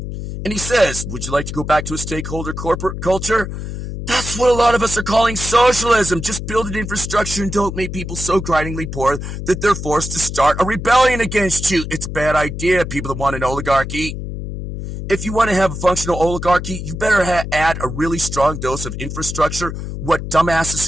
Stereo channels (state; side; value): noise; left; hum, 7 dB below the sound